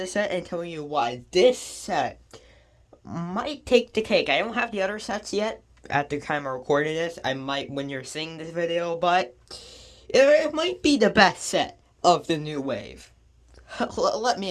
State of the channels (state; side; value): identical; both; correlation 1.00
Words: set and telling you why this set might take the cake. I don't have the other sets yet at the time of recording this. I might when you're seeing this video, but it might be the best set of the new wave. Let